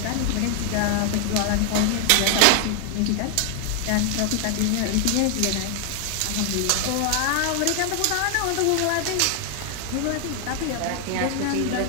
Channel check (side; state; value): both; different; correlation 0.00